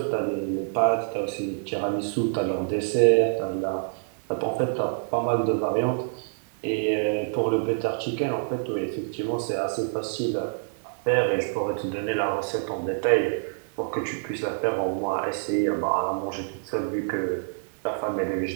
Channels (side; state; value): left; silent; digital silence